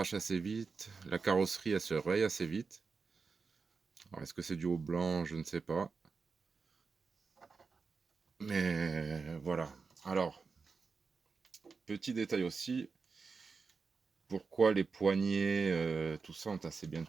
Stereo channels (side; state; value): left; quieter; 4.8 dB